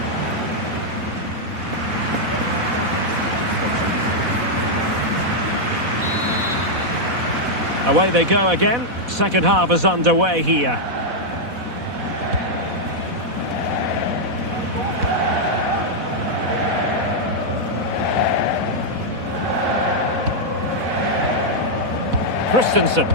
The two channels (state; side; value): late; left; 4.1 ms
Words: Away they go again. Second half is underway here. Christensen.